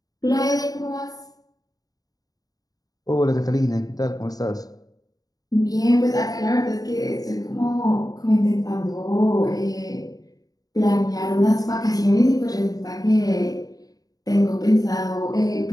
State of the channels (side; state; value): right; late; 0.18 ms